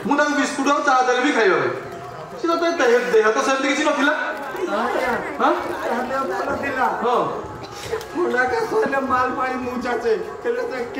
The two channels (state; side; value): identical; both; correlation 1.00